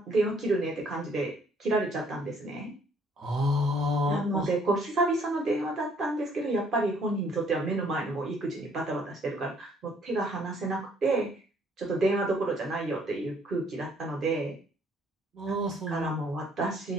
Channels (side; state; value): both; normal; correlation 0.63